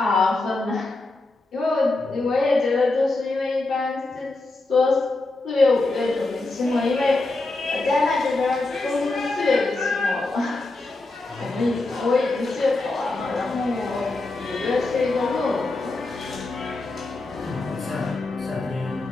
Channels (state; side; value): quieter; right; 3.2 dB